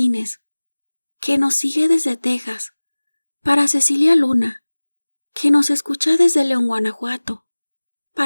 que nos sigue desde Texas. Para Cecilia Luna, que nos escucha desde León, Guanajuato.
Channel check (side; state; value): both; inverted; correlation -1.00